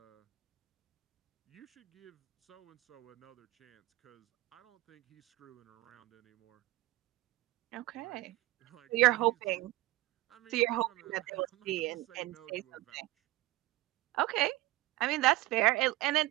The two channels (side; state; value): left; quieter; 17.8 dB